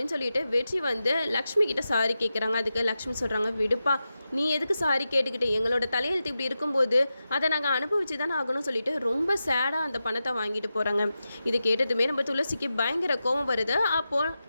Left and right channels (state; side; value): inverted; both; correlation -0.91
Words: சொல்லிட்டு வெற்றி வந்து லக்ஷ்மி கிட்ட சாரி கேட்குறாங்க. அதுக்கு லக்ஷ்மி சொல்கிறாங்க, விடுப்பா, நீ எதுக்கு சாரி கேட்டுக்கிட்டு, எங்களோட தலையெழுத்து இப்படி இருக்கும்போது அதை நாங்கள் அனுபவிச்சு தானே ஆகணும்னு சொல்லிட்டு ரொம்ப சேடாக அந்த பணத்தை வாங்கிட்டு போகிறாங்க. இது கேட்டதுமே நம்ம துளசிக்கு பயங்கர கோபம் வருது. அப்போது